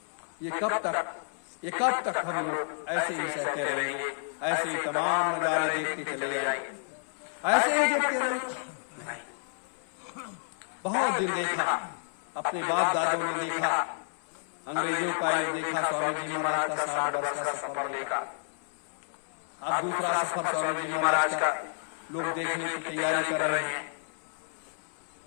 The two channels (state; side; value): silent; right; 58 dB below the other